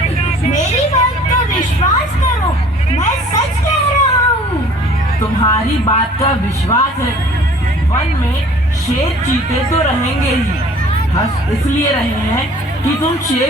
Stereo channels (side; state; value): both; normal; correlation 0.51